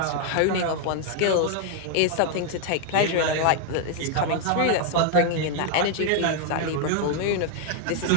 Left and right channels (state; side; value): different; both; correlation 0.00